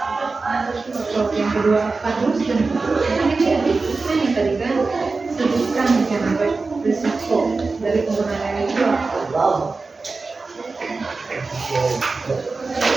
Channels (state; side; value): quieter; left; 3.9 dB